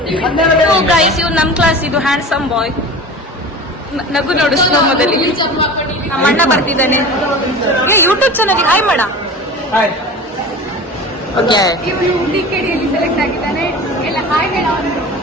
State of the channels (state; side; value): normal; both; correlation 0.35